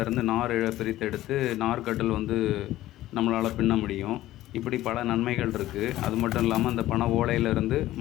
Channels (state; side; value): quieter; right; 15.1 dB